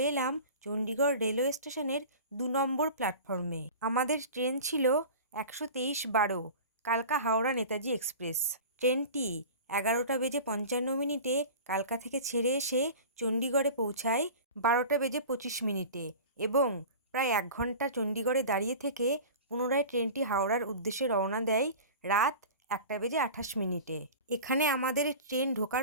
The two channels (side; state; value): both; inverted; correlation -0.36